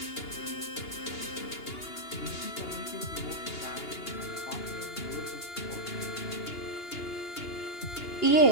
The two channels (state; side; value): late; right; 2.8 ms